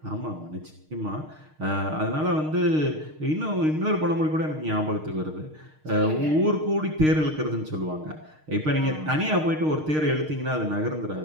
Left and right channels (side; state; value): left; late; 6.5 ms